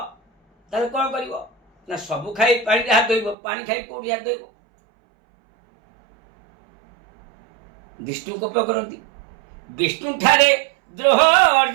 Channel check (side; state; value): left; drops out; at 3.4 s